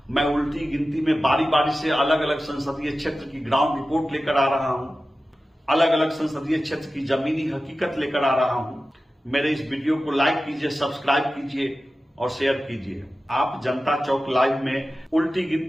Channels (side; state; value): both; normal; correlation 0.94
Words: मैं उल्टी गिनती में बारी बारी से अलग अलग संसदीय क्षेत्र की ग्राउंड रिपोर्ट लेकर आ रहा हूं, अलग अलग संसदीय क्षेत्र की जमीनी हकीकत लेकर आ रहा हूं। मेरे इस वीडियो को लाइक कीजिए, सब्सक्राइब कीजिए और शेयर कीजिए। आप जनता चौक लाइव में उल्टी